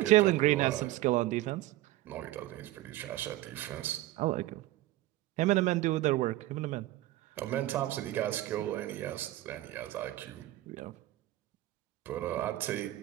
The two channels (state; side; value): quieter; left; 16.1 dB